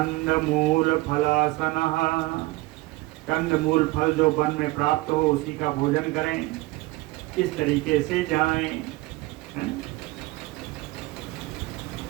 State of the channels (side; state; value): left; quieter; 20.9 dB